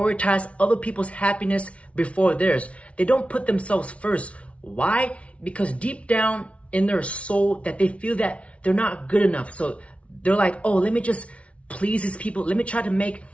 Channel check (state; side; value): late; right; 0.063 ms